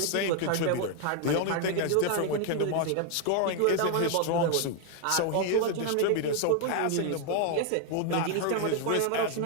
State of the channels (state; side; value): different; both; correlation 0.00